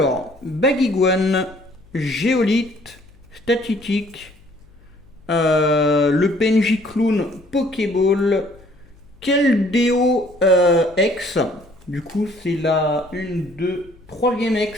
Bagiguan, Géolite, Statitique, le PNJ Clown Pokéball, Keldeo X. Du coup, c'est la 1, 2, 3e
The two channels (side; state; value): left; noise; hum, 28 dB below the sound